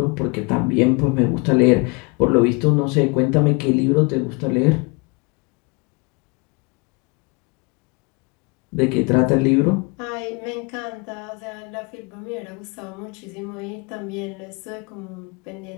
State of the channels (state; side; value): quieter; right; 29.9 dB